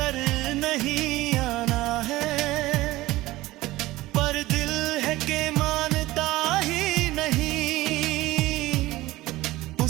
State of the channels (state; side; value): quieter; left; 18.0 dB